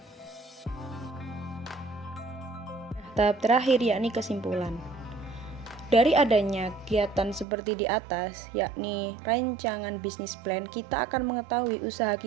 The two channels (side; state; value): left; drops out; at 7.5 s